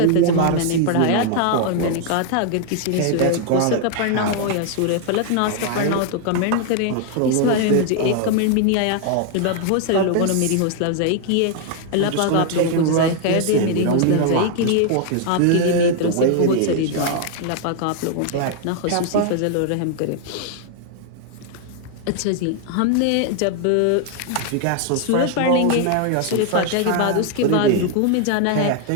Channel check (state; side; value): different; both; correlation 0.00